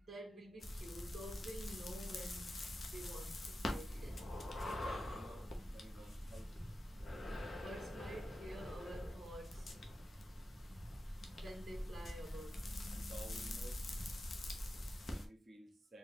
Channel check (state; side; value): normal; both; correlation 0.92